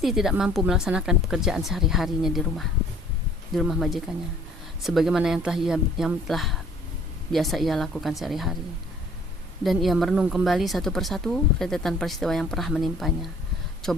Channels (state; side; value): normal; both; correlation 0.55